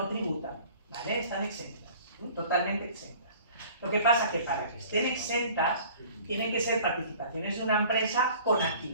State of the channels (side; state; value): both; inverted; correlation -0.48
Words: tributan, ¿vale? Están exentas, totalmente exentas. Lo que pasa es que para que estén exentas, tienen que ser participaciones de una empresa con